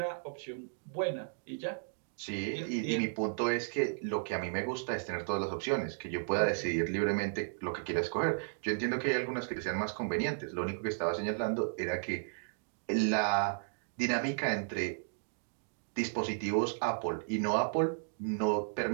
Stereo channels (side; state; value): left; silent; digital silence